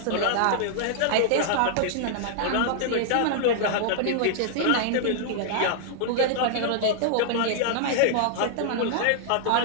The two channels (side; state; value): both; different; correlation -0.01